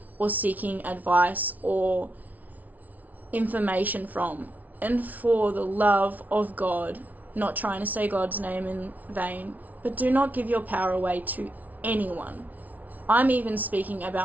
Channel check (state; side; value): late; left; 0.075 ms